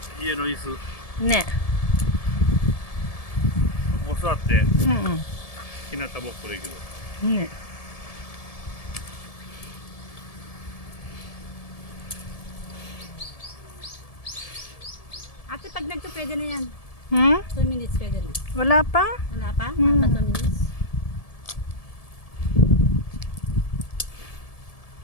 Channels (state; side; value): late; right; 1.7 ms